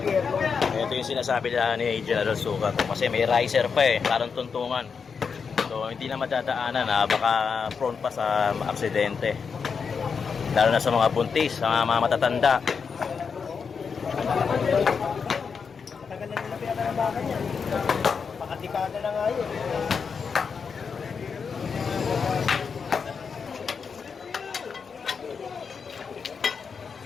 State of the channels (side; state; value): right; quieter; 5.8 dB